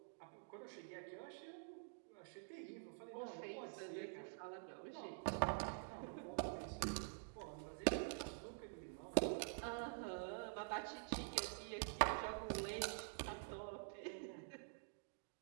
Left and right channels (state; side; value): silent; left; digital silence